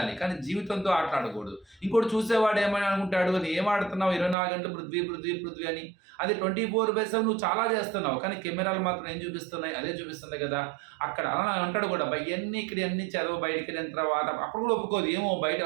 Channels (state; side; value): drops out; left; at 4.4 s